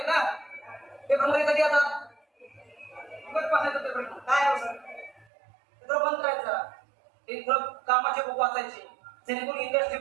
ना, पेपर मध्ये कधी आता पेपर काय सर, थोडं बंद करायचं. ते थोडं कामाचे बुक वाचायचे, जेणेकरून इंडस्ट्री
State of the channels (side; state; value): left; drops out; at 5.2 s